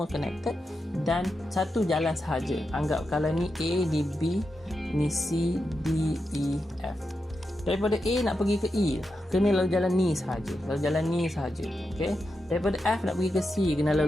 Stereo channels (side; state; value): both; normal; correlation 0.88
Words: connected. Dan satu jalan sahaja. Anggap kalau ni A, ni B, ni C, D, E, F. Daripada A nak pergi ke E, kena lalu jalan ni sahaja. Lalu jalan ni sahaja. Okey. Daripada F nak pergi ke C, kena